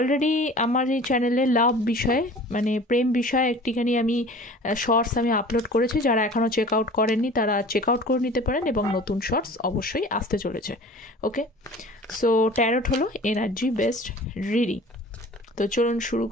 আমার এই চ্যানেলে লাভ বিষয়ে মানে প্রেম বিষয়ে একটিখানি আমি শর্টস আমি আপলোড করেছি। যারা এখনও চেক আউট করেননি তারা চেক আউট করে নিতে পারেন, এবং নতুন শর্টস অবশ্যই আসতে চলেছে। ওকে, সো ট্যারোট হলো এনার্জি বেসড রিডিং। তো চলুন শুরু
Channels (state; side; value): normal; both; correlation 0.43